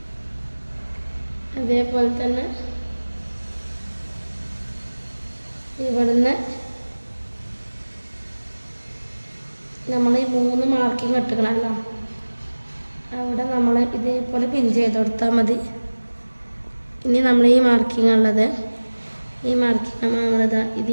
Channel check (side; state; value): both; inverted; correlation -1.00